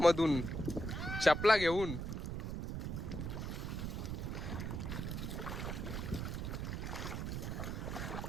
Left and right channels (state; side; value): noise; right; rumble, 3 dB below the sound